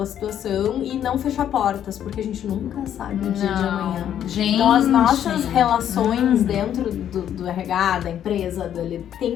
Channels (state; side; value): quieter; right; 10.1 dB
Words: situação e não fechar portas, porque a gente nunca sabe o dia de amanhã. Gente. Então as nossas relações dentro do RH, da empresa, tem